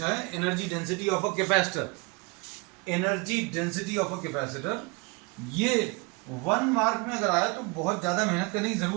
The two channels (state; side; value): quieter; left; 28.7 dB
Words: है energy density of a capacitor, energy density of a capacitor, ये 1 मार्क में अगर आया तो बहुत ज्यादा मेहनत करने की